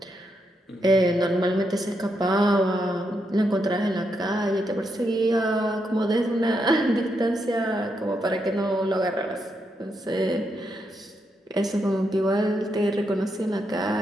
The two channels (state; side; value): normal; both; correlation 0.81